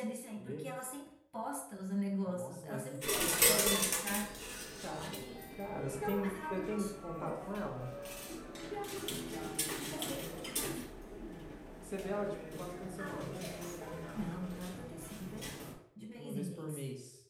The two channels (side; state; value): both; identical; correlation 1.00